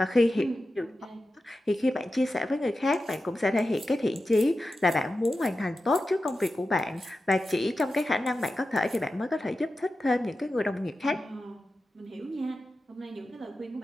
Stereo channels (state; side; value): normal; both; correlation 0.92